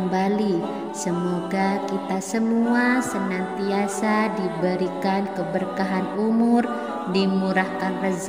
Semoga kita semua senantiasa diberikan keberkahan umur, dimurahkan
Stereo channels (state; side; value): identical; both; correlation 1.00